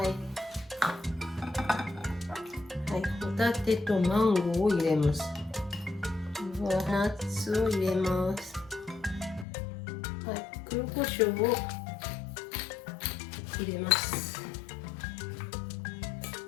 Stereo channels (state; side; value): drops out; right; at 9.5 s